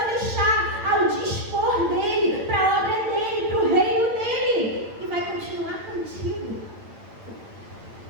deixar ao dispor dele, para a obra dele, para o reino dele. E vai continuar contigo.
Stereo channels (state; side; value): late; left; 8.9 ms